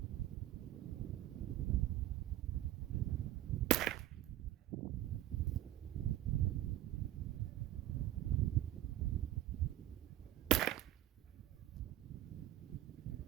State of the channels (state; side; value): quieter; left; 13.5 dB